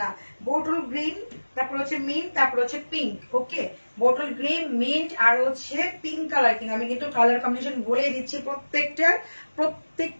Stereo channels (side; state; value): both; inverted; correlation -1.00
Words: বোটল গ্রিন, তারপর হচ্ছে মিন্ট, তারপর হচ্ছে পিঙ্ক। ওকে, বোটল গ্রিন, মিন্ট আর হচ্ছে পিঙ্ক কালার। কিন্তু আমি কিন্তু কালার কম্বিনেশন বলে দিচ্ছি